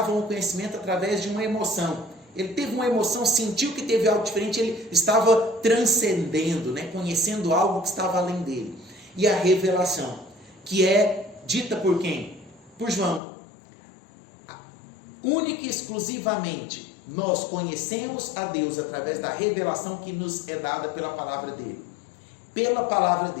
o conhecimento através de uma emoção. Ele teve uma emoção, sentiu que teve algo diferente, ele estava transcendendo, né? Conhecendo algo que estava além dele. E a revelação, que é dita por quem? Por João. Única e exclusivamente nós conhecemos a Deus através da revelação que nos é dada pela palavra dele. Pela palavra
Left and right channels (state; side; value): drops out; right; at 13.2 s